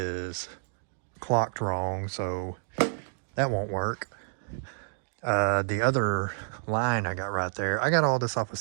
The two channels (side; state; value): left; silent; digital silence